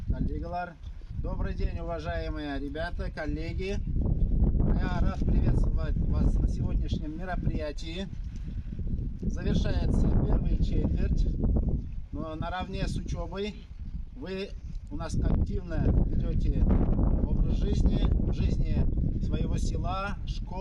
коллегалар. Добрый день, уважаемые ребята, коллеги. Я рад приветствовать вас на сегодняшнем мероприятии. Завершается первая четверть, но наравне с учебой вы у нас активно ведете образ жизни, в жизни своего села,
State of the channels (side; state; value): both; identical; correlation 1.00